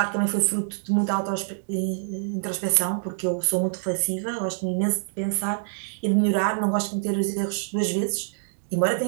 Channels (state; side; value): silent; left; digital silence